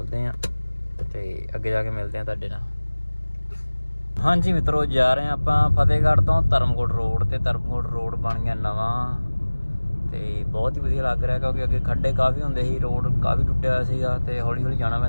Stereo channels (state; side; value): inverted; both; correlation -1.00